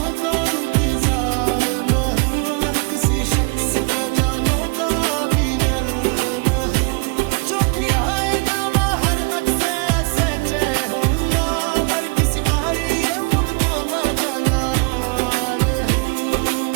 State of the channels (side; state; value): left; quieter; 31.1 dB